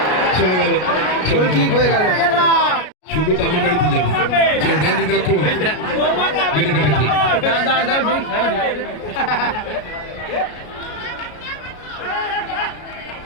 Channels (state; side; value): late; right; 33 ms